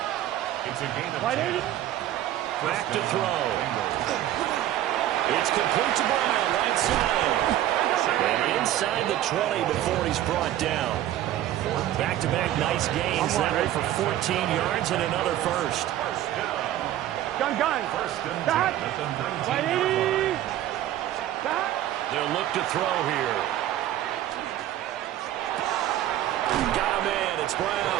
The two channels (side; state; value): left; quieter; 13.0 dB